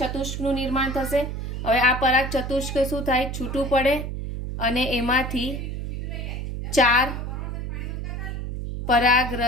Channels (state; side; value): noise; right; hum, 5 dB below the sound